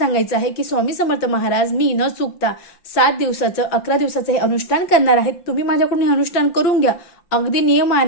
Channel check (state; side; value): late; right; 5.8 ms